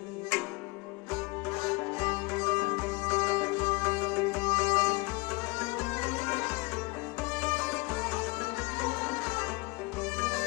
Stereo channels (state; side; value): quieter; right; 26.5 dB